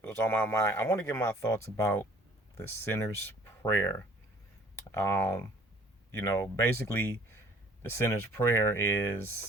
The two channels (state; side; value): normal; both; correlation 0.54